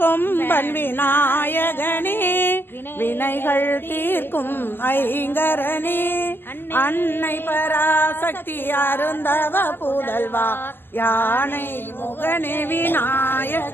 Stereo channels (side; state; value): right; late; 0.099 ms